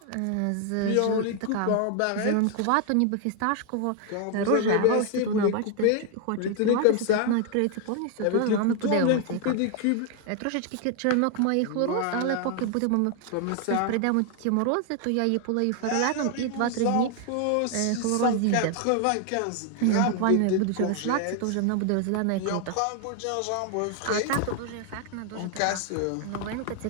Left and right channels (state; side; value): different; both; correlation 0.00